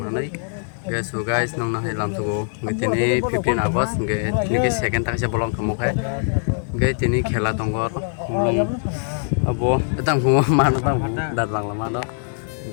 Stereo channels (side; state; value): right; silent; digital silence